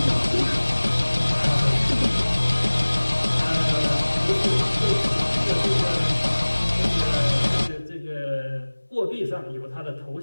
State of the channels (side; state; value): both; inverted; correlation -1.00